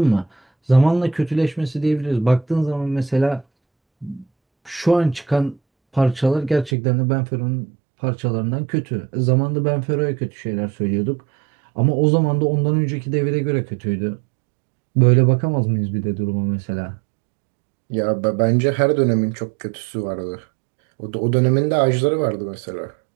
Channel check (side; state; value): left; drops out; at 6.8 s